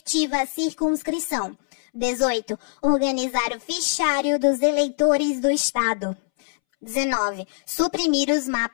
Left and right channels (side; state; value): right; silent; 63 dB below the other